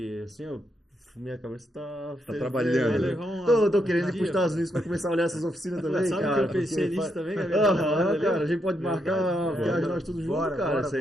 assim, ó, minha cabeça tá trabalhando. Vai levar um- Tô querendo ir dia, pros Estados Unidos pra começar a olhar essas oficinas também, Sabe cara. que eu pensei porque nisso também, Aham, Gabriel? cara, a gente pode marcar uma viagem nós todos juntos, Bora, cara. bora, Isso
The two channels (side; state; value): both; normal; correlation 0.80